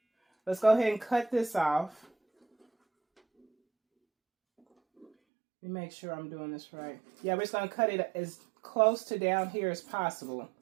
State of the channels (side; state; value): left; drops out; at 5.1 s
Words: Let's go ahead and cut this off. Let me make sure I'm doing this right. Yeah, we're just going to cut it as close to down here as possible